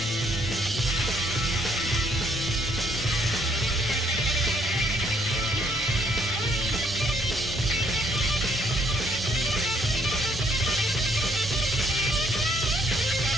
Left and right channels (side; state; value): both; normal; correlation 0.67